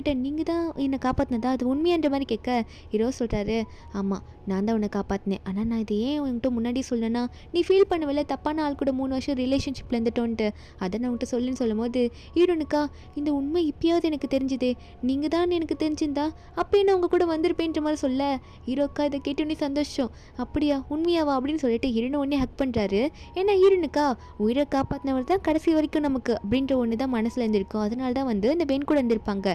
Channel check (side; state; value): both; identical; correlation 1.00